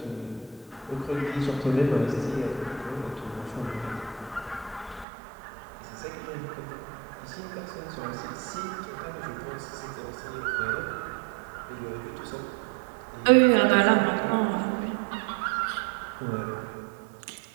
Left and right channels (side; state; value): left; drops out; at 5.1 s